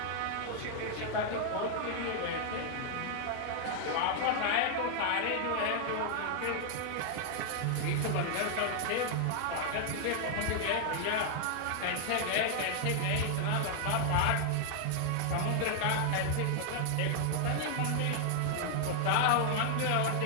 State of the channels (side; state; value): both; different; correlation -0.01